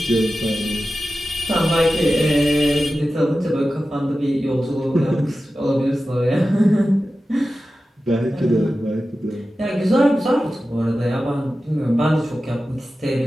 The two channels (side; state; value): both; normal; correlation 0.94